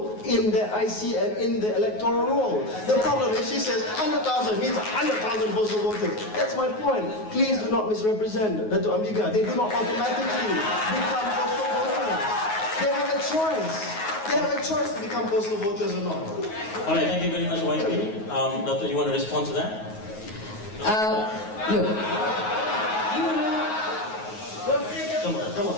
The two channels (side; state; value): right; late; 9.4 ms